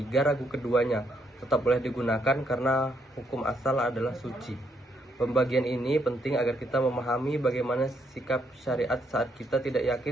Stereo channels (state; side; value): normal; both; correlation 0.74